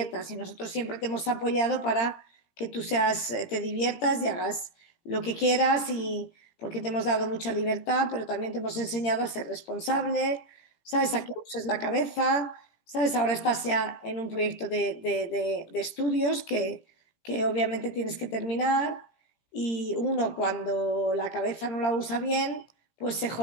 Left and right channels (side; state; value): right; late; 17 ms